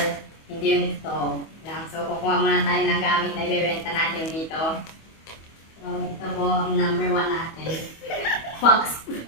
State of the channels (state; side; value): late; right; 25 ms